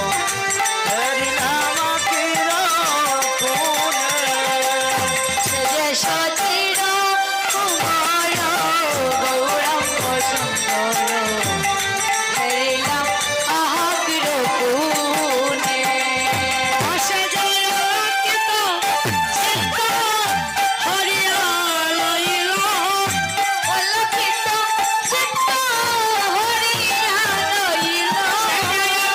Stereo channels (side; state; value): both; identical; correlation 1.00